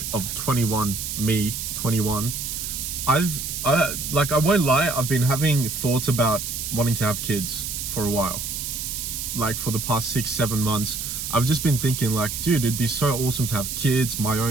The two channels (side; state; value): right; noise; hiss, 5 dB below the sound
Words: of 21, me, 21, I won't lie, I've been having thoughts about wanting to have kids for a while. Like for the past 6-7 months, I've just been thinking like, dude, it'd be so awesome to have kids, my